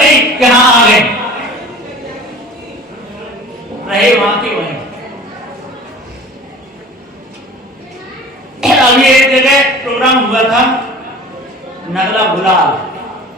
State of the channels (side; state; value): both; normal; correlation 0.42